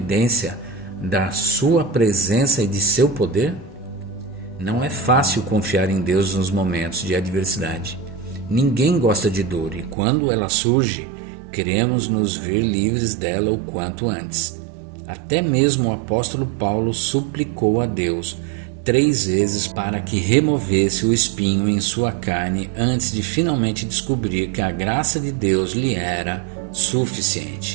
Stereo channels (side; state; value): left; drops out; at 10.0 s